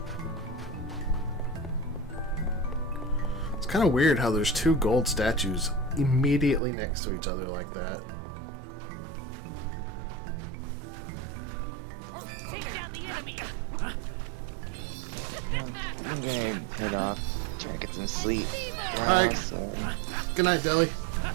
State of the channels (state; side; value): drops out; left; at 6.6 s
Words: It's kind of weird how there's two gold statues immediately next to each other like that. Take down the enemy. I'm gonna head off, try to get some sleep. Alright. So, Good night, Deli.